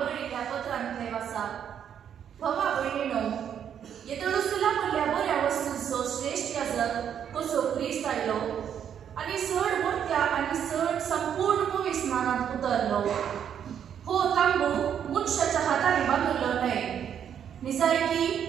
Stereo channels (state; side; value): quieter; left; 8.8 dB